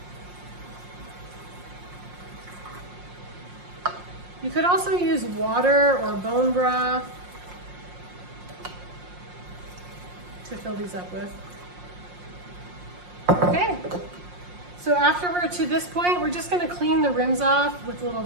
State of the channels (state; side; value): late; left; 5.6 ms